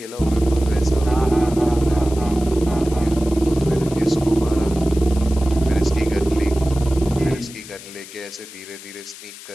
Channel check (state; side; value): noise; left; hiss, 16 dB below the sound